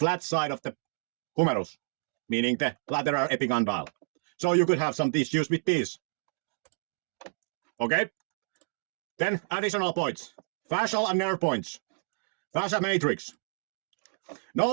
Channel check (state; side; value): silent; left; digital silence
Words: side of the humerus, meaning the lateral epicondyle. So you could have some issues with these. Okay? Then additional points. Fascial and nerve points. Fascia matrix.